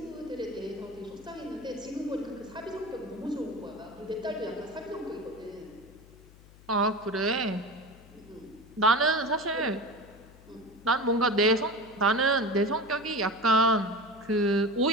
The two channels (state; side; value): noise; left; hum, 23 dB below the sound